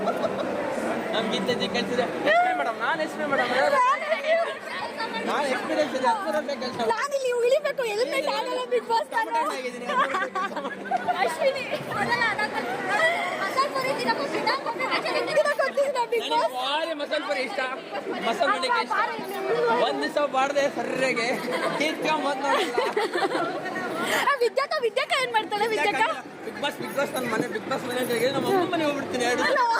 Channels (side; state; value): both; identical; correlation 1.00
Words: ನಮ್ಗಿಂತ ಕಳಿಸಿದೆ ಮೇಡಮ್. ನಾನು ಎಕ್ಸ್ಪ್ಲೇನ್ ಮೇಡಮ್, ನಾನು ಎಕ್ಸ್ಪೀರಿಯನ್ಸ್ ಇದೆ. ನಾನು ಇಲ್ಲಿ ಉಳಿಬೇಕು, ಹೆಲ್ಮೆಟ್ ಆಗಲ್ಲ. ಬಿಗ್ ಬಾಸ್ ಅಶ್ವಿನಿ ಮಸಾಲೆ ಪುರಿ ಇಷ್ಟ, ಮಸಾಲೆ ಮನೆಗೆ ಇಷ್ಟ. ಒಂದ್ ದಿವಸ ಬಾಡ್ದೆ ಸರ್ರೆಗೆ ತೀರ್ಕೊಂಬಂದ್ ನೋಡಿ. ವಿದ್ಯಾಕ ಏನ್ ಮಾಡ್ತಾಳೆ? ವಿದ್ಯಾಕ ಬಿಗ್ ಬಾಸ್ ನನ್ನ ಮನೆ, ಬಿಗ್ ಬಾಸ್ ಮನೆಗೆ ನಮ್ಮ ಅಮ್ಮ ಮನೆ ಹೋಗ್ಬಿಡ್ತೀನಿ.